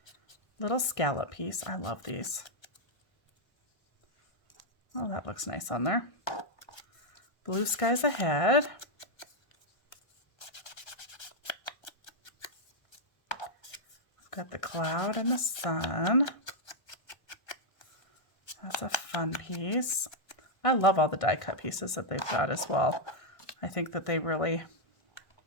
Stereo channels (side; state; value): right; late; 1.5 ms